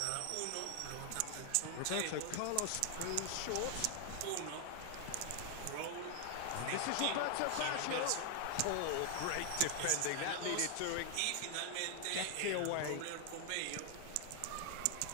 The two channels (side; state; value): both; different; correlation 0.00